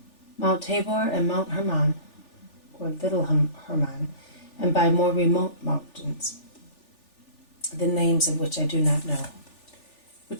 Mount Tabor and Mount Hermon, or Little Hermon, and by more remote mountains, the names of which I do not know,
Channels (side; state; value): right; late; 3.4 ms